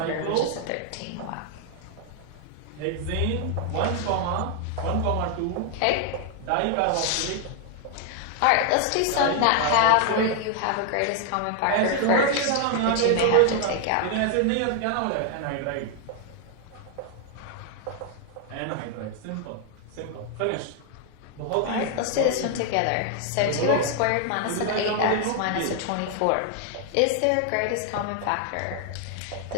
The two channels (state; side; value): different; both; correlation 0.00